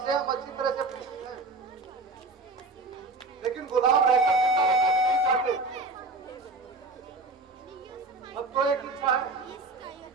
हम अच्छी तरह से परिचित हैं, लेकिन गुलाम रहकर अब तो एक इच्छा है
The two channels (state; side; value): quieter; left; 3.3 dB